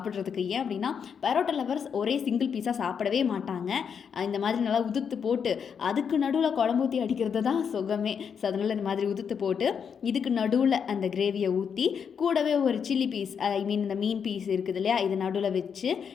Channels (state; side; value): quieter; right; 7.0 dB